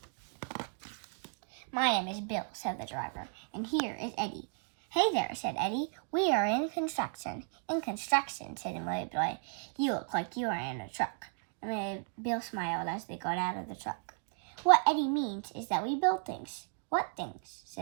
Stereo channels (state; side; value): silent; left; 55 dB below the other